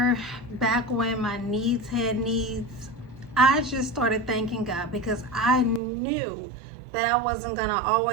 back when my needs had needs, I just started thanking God because I knew that I wasn't going to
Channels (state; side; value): drops out; left; at 5.8 s